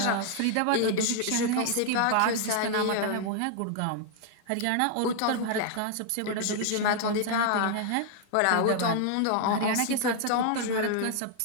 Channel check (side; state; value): both; different; correlation 0.00